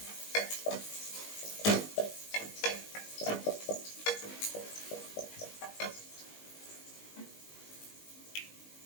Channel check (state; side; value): late; right; 19 ms